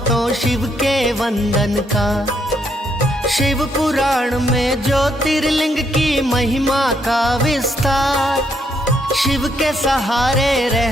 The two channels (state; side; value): normal; both; correlation 0.74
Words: शिव के वंदन का। शिव पुराण में ज्योतिर्लिंग की महिमा का विस्तार, शिव के सहारे